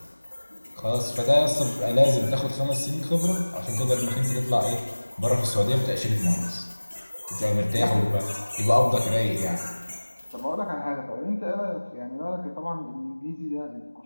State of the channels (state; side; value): inverted; both; correlation -1.00